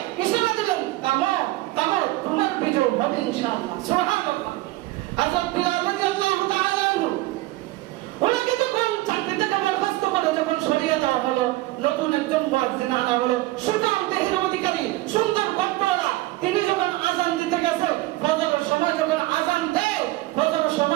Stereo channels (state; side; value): quieter; left; 18.6 dB